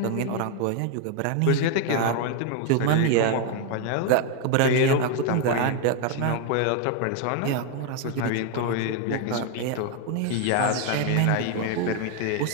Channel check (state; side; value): different; both; correlation 0.01